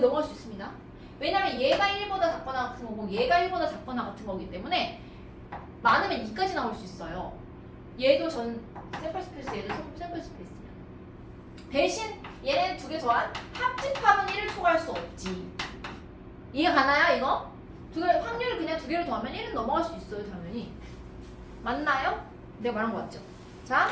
넘어갈 수 있습니다. 왜냐면 얘가 1보다 작거나 같은 거고 얘가 1보다 작거나 같은 거기 때문에 많으면 2까지 나올 수 있어요. 얘도 전 샘플 스페이스, 얘도 샘플 스페이스. 대신 얘네 두 개 더한 합집합은 1을 초과할 수 없지. 이해 가나요, 이거? 두 개, 확률을 그냥 두 개를 더하면 1은 넘어갈 수 있어요, 당연히. 맞나요? 내가 말한 거 맞죠? 자,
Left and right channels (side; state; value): both; identical; correlation 1.00